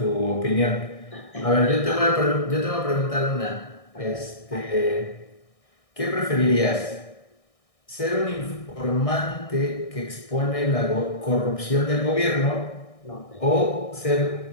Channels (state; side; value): late; right; 1.6 ms